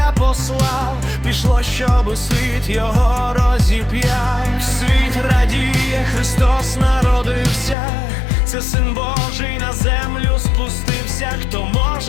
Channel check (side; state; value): right; drops out; at 7.8 s